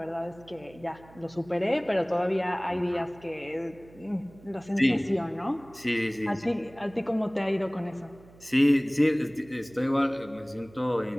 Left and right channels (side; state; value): right; noise; hum, 23 dB below the sound